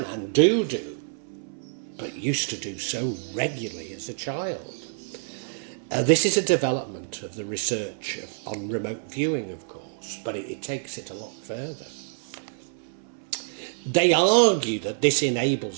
and do, but used to do so regularly as a child. This is a development of the research on remote viewing, of course, but it takes it a lot further. They argue that this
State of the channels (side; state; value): left; silent; 58 dB below the other